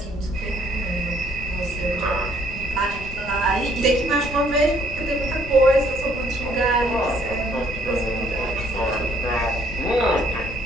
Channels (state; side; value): noise; left; rumble, 11 dB below the sound